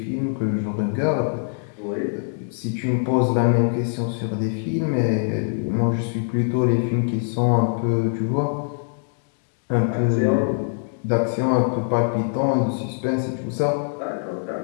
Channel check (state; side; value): silent; right; digital silence